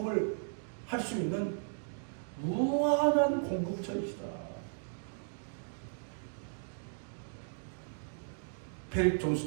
할 수 있는 무한한 공급처이시다. 페릭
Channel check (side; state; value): left; silent; digital silence